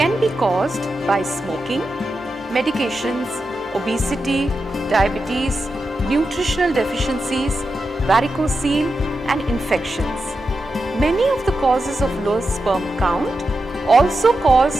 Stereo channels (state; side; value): normal; both; correlation 0.89